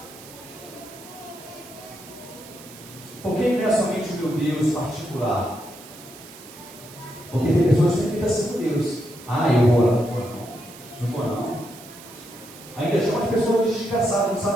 Porque ele não é somente o meu Deus particular. Porque tem pessoas que ficam assim com Deus. Ah, eu vou lá, não vou não. Não vou não. Ainda chama as pessoas de desgraçado, não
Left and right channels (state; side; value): noise; right; hiss, 18 dB below the sound